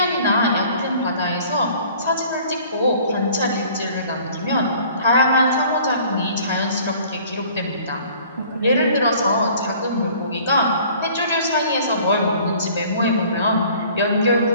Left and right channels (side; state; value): both; inverted; correlation -0.52